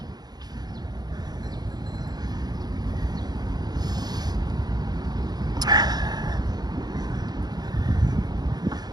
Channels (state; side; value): late; left; 0.19 ms